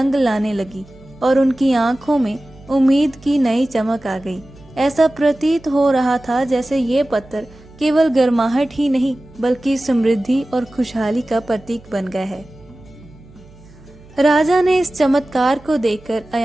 लाने लगी और उनकी आंखों में उम्मीद की नई चमक आ गई। ऐसा प्रतीत हो रहा था जैसे ये पत्थर केवल गर्माहट ही नहीं, बल्कि समृद्धि और खुशहाली का प्रतीक बन गया है। राजा ने इस चमत्कार को देखकर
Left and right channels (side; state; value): right; noise; hum, 24 dB below the sound